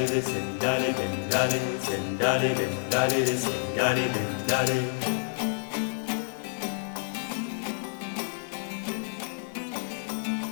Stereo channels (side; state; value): right; silent; 59 dB below the other